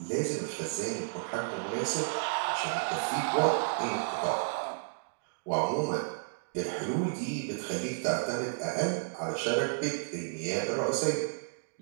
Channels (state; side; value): silent; left; digital silence